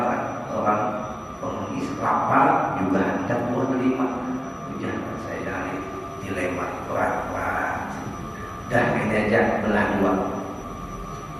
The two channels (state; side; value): identical; both; correlation 1.00